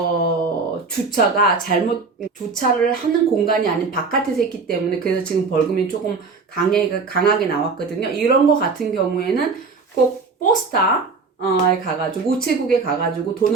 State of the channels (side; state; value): left; quieter; 4.5 dB